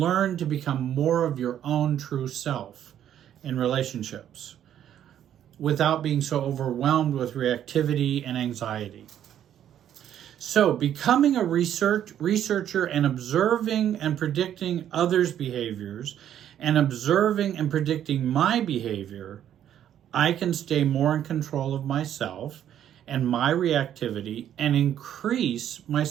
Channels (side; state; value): left; quieter; 10.4 dB